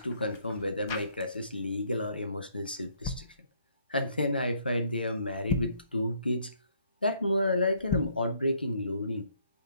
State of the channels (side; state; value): both; inverted; correlation -0.67